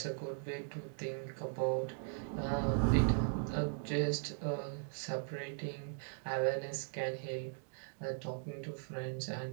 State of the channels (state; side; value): silent; left; digital silence